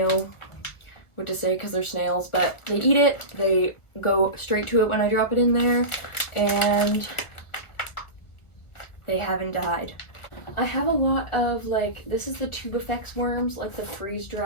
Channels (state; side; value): late; right; 1.4 ms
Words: what to say because they're snails, but they eat it, they go straight to it when I drop it in there, and they haven't died. I have a lot of like, this is the Tubifex worms, like the